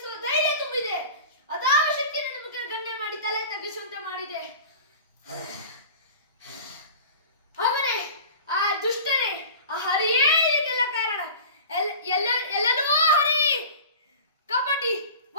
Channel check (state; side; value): inverted; both; correlation -0.38